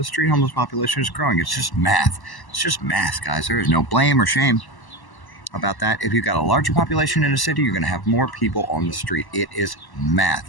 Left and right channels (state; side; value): late; right; 1.1 ms